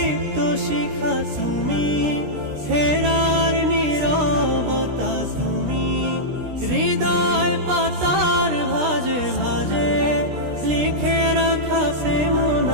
শিখা তুমি, হেরার নীরবতা তুমি, হৃদয় পাতার ভাজে ভাজে লিখে রাখা প্রেম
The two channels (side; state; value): left; late; 16 ms